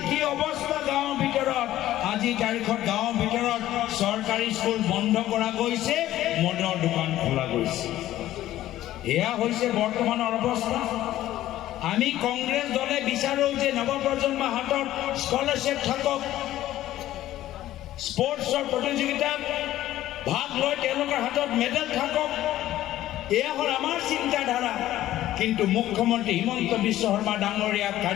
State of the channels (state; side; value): quieter; right; 14.0 dB